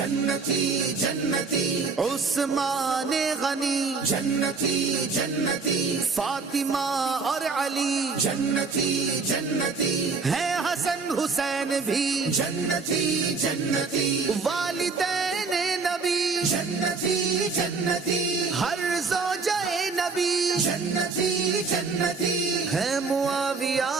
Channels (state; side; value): quieter; left; 4.5 dB